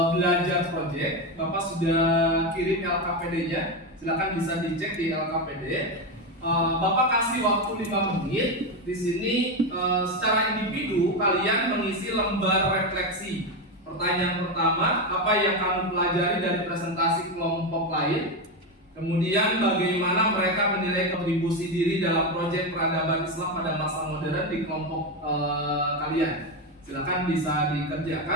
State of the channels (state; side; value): normal; both; correlation 0.12